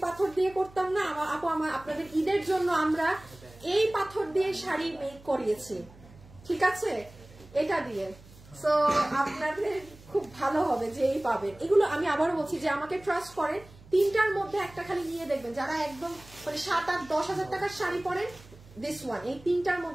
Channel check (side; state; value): right; noise; hum, 22 dB below the sound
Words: পাথর দিয়ে করতাম না আপু, আপনাদের ঈদের জন্য আমরা এই পাথর দিয়ে শাড়ি মেক করিয়েছি, ঠিক আছে এটা দিয়ে। সো আপনাদের খুব ভালো হবে যে এই পাবেন এগুলো। আমি আবারও বলছি যে আমাকে ট্রাস্ট করেন, 3টার মধ্যে একটা খালি নিয়ে দেখবেন, যারা একদম মানে 7-8-10 হাজার টাকার শাড়ি পরেন, দিস ওয়ান, এই 3টার